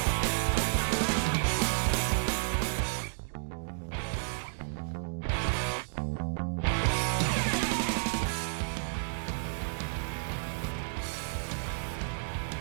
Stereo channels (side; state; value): left; silent; digital silence